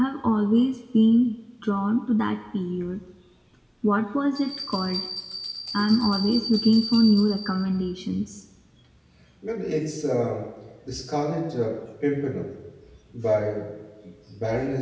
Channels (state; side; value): identical; both; correlation 1.00